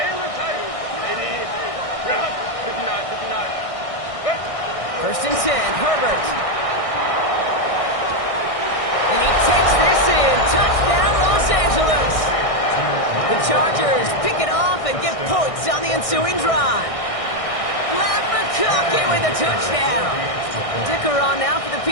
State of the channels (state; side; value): late; right; 1.6 ms